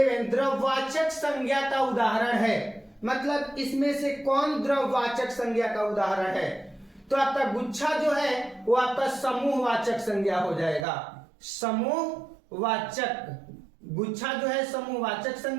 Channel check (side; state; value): left; drops out; at 10.9 s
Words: द्रव्यवाचक संज्ञा का उदाहरण है, मतलब इसमें से कौन द्रव्यवाचक संज्ञा का उदाहरण है? तो आपका गुच्छा जो है वो आपका समूहवाचक संज्ञा हो जाएगा। समूहवाचक, गुच्छा जो है समूहवाचक